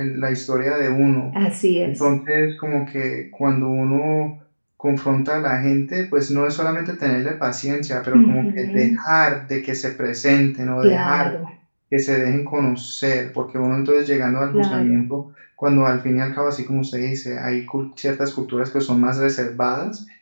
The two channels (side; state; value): both; inverted; correlation -1.00